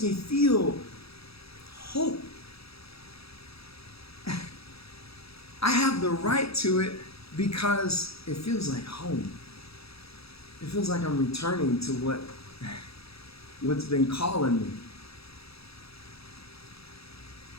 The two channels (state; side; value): late; right; 0.77 ms